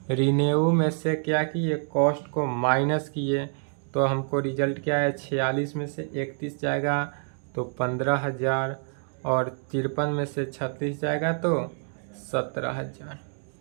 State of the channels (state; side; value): silent; left; 60 dB below the other